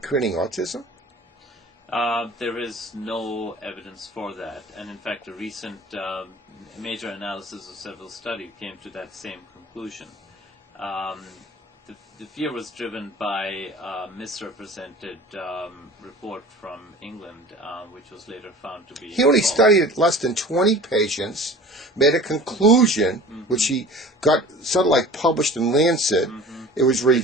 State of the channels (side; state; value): both; normal; correlation 0.42